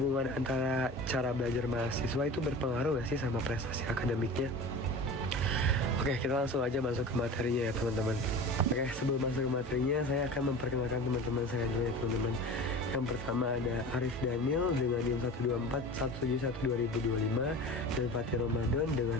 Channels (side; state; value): both; normal; correlation 0.35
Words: antara cara belajar mahasiswa itu berpengaruh gak sih sama prestasi akademiknya. Oke, kita langsung aja masuk ke materinya ya teman-teman. Oke, sebelum masuk ke materinya, saya akan memperkenalkan teman-teman saya dulu ya teman-teman. Yang pertama ada Arif Daniel dengan NIM 124171 2025 dan Fatih Ramadan